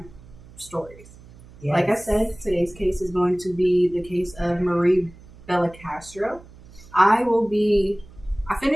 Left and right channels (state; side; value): noise; right; hum, 22 dB below the sound